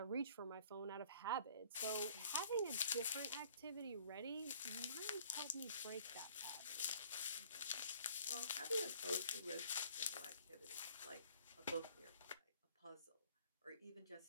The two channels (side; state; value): both; inverted; correlation -0.54